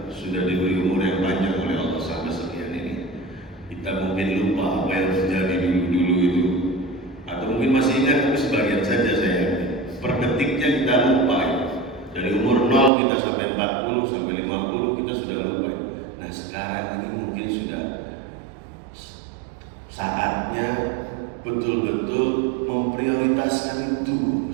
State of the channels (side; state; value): left; drops out; at 12.9 s